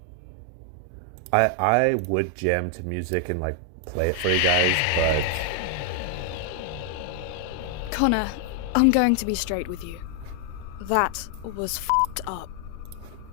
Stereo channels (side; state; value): both; different; correlation 0.00